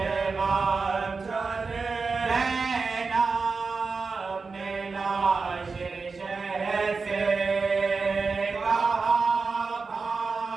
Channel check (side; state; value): left; quieter; 4.5 dB